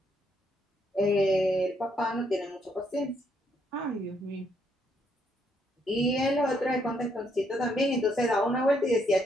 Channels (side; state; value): both; normal; correlation 0.73